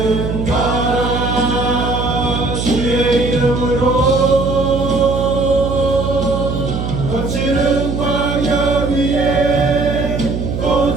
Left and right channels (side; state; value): right; noise; hum, 3 dB below the sound